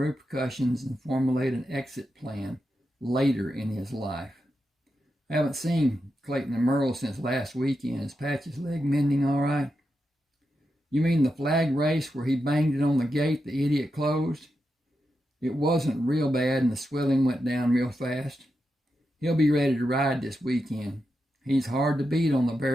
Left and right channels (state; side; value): normal; both; correlation 0.87